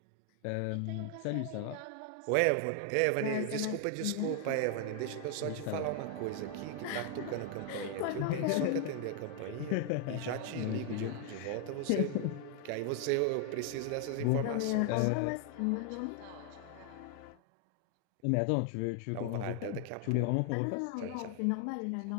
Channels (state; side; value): different; both; correlation 0.00